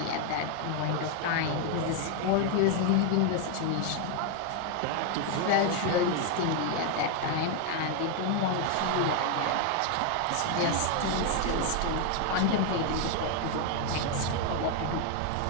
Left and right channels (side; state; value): both; different; correlation 0.01